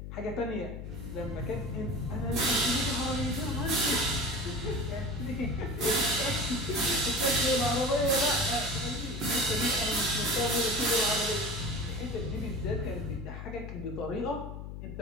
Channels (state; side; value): noise; left; hum, 9 dB below the sound